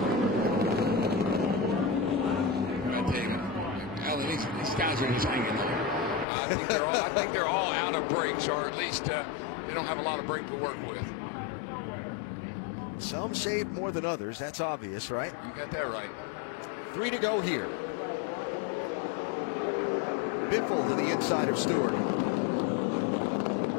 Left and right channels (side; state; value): right; drops out; at 6.2 s